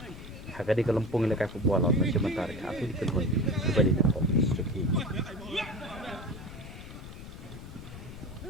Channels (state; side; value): noise; left; rumble, 13 dB below the sound